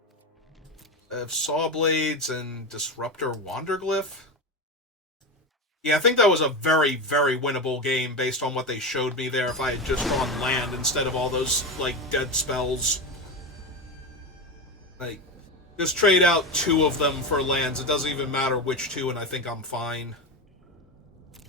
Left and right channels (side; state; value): both; normal; correlation 0.18